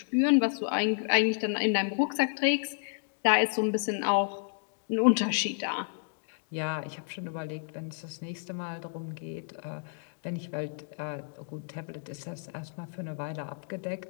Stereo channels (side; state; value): right; silent; digital silence